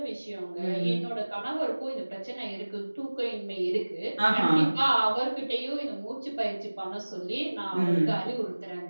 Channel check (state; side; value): inverted; both; correlation -1.00